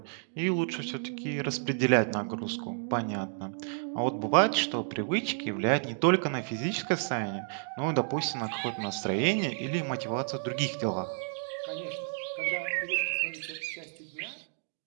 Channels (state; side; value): silent; left; 57 dB below the other